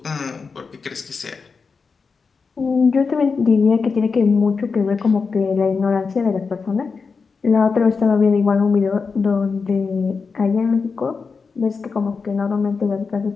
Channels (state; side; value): quieter; right; 5.0 dB